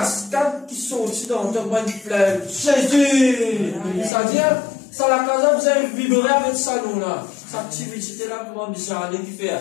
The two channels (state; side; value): drops out; right; at 4.1 s